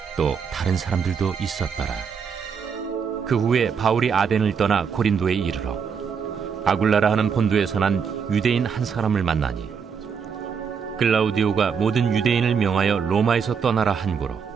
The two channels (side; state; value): left; quieter; 6.5 dB